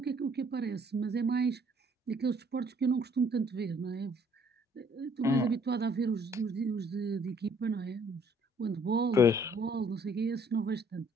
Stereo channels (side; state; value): both; normal; correlation 0.62